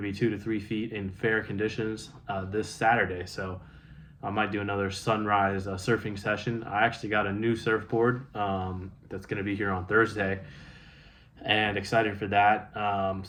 2 to 3 feet in fair conditions this Saturday. So I might do another sunrise surfing session. I actually got a new surfboard that's going to be here on Thursday, and excited for that.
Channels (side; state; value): both; identical; correlation 1.00